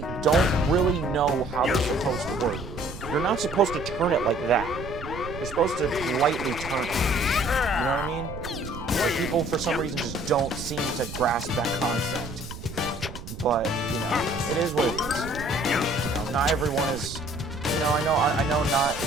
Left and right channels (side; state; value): right; noise; rumble, 11 dB below the sound